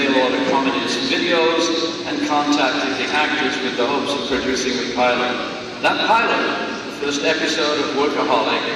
Order Comedy's videos and contacted the actors with the hopes of producing a pilot. That pilot, the first episode of Workaholic,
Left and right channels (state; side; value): identical; both; correlation 1.00